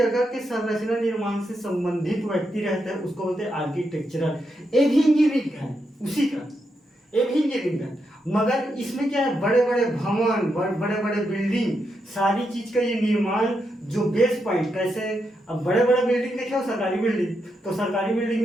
के संरचना निर्माण से संबंधित व्यक्ति रहता है उसको बोलते हैं आर्किटेक्चरल। ये भी इंजीनियरिंग है उसी का, ये भी इंजीनियरिंग है, मगर इसमें क्या है, बड़े बड़े भवन, बड़े बड़े बिल्डिंग, सारी चीज का ये निर्माण जो बेस पॉइंट कैसे, अब बड़े बड़े बिल्डिंग देखे हो, सरकारी बिल्डिंग, तो सरकारी बिल्डिंग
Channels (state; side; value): normal; both; correlation 0.83